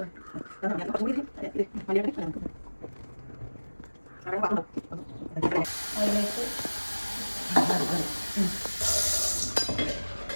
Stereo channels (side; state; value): both; inverted; correlation -1.00